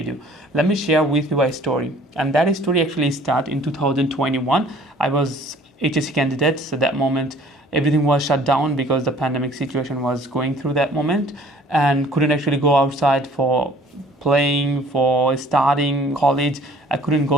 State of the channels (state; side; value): normal; both; correlation 0.53